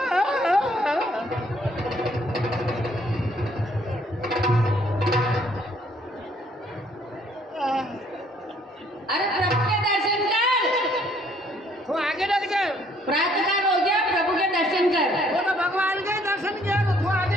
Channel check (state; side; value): normal; both; correlation 0.64